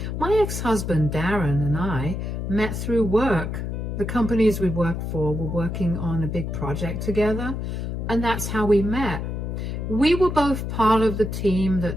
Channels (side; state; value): left; noise; hum, 4 dB below the sound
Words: My ex-husband, Darren, and I met through work. The companies we worked for were working on a big project together, and that's how we met. We were both part of the team